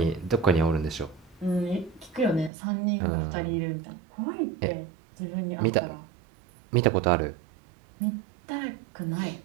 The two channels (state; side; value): drops out; left; at 2.5 s